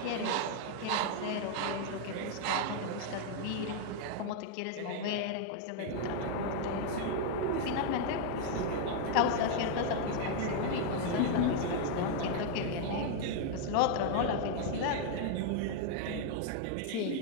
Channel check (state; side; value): different; both; correlation 0.00